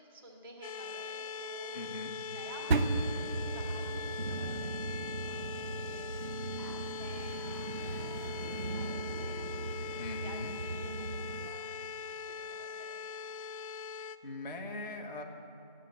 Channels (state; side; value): inverted; both; correlation -0.52